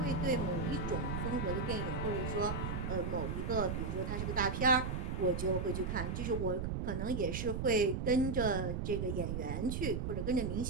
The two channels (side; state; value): right; noise; rumble, 2 dB below the sound